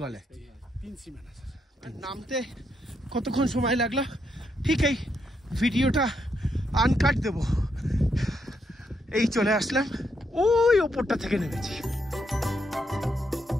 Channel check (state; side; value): normal; both; correlation 0.78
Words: है। 3 सीमाना सर। নামতে কতক্ষণ সময় লাগলো? ঠিক এই ভিডিওটা আনকাট দেব। এই চলে আসলাম, ওই ওপরটা থেকে নেমেছি।